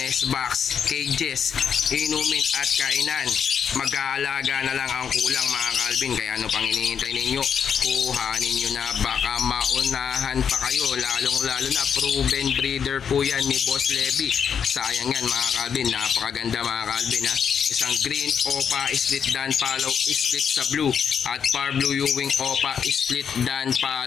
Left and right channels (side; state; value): right; quieter; 7.3 dB